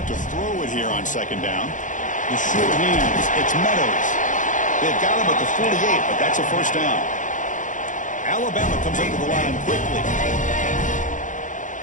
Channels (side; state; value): right; late; 0.37 ms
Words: look to throw it here on 2nd down. The short hands. It's Meadows. They've got him at the 48, but that's a 1st down. Alabama comes up to the line quickly.